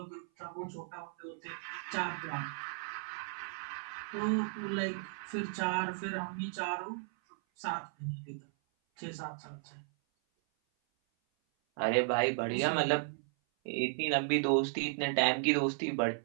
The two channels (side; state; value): left; silent; 54 dB below the other